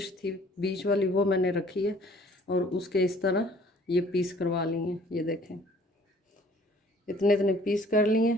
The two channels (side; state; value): both; normal; correlation 0.56